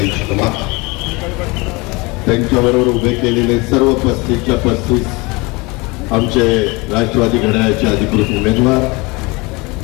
शर्मा, त्यांच्याबरोबर उभे केलेले सर्व 35च्या 35 आमचे राष्ट्रवादी घड्याळाचे अधिकृत उमेदवार,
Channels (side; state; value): right; quieter; 25.6 dB